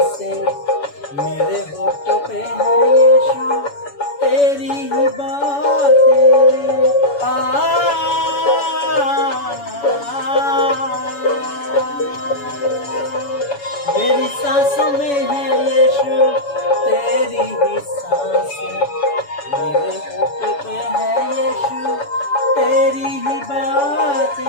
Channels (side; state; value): right; late; 7.1 ms